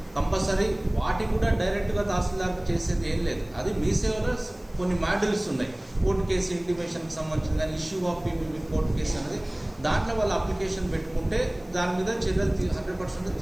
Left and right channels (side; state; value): left; noise; hiss, 30 dB below the sound